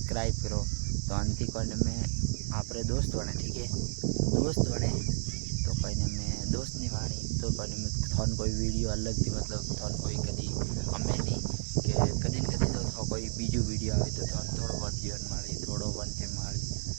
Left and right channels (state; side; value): silent; left; 57 dB below the other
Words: करो, तो अंति कोने में आप दोस्त बने, ठीक है, दोस्त बने तो कोई ने मैं दोस्त नहीं वाणी तो कोई में थोन कोई वीडियो अलग थी, मतलब थोन कोई कदी हमें नहीं कि कदी न कदी तो कोई बीजू वीडियो आए तो थोन थोड़ो बहुत जीवन माड़ी, थोड़ो वनते माड़ी